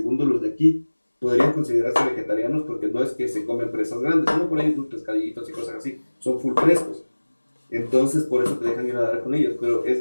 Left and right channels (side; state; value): both; inverted; correlation -1.00